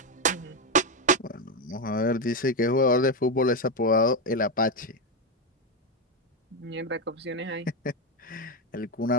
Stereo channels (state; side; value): normal; both; correlation 0.08